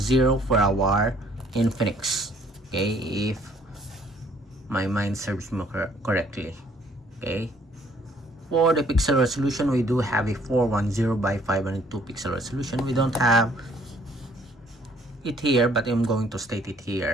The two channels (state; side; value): normal; both; correlation 0.61